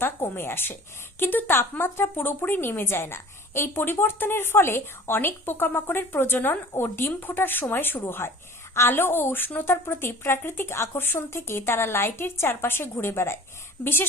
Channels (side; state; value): both; normal; correlation 0.44